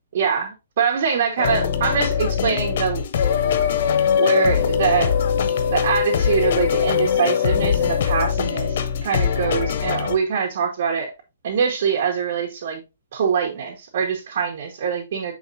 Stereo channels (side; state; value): both; inverted; correlation -0.57